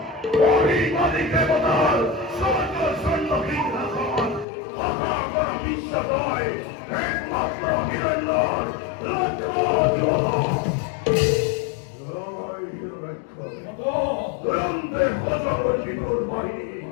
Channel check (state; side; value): drops out; right; at 4.5 s